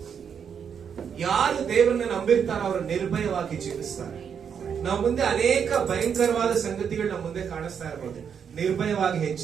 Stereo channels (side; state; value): left; quieter; 7.4 dB